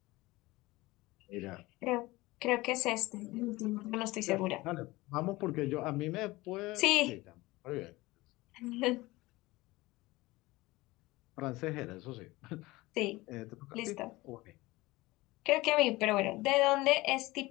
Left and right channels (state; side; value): quieter; right; 20.4 dB